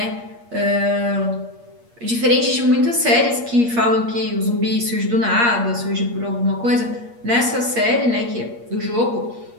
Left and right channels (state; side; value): late; left; 8.5 ms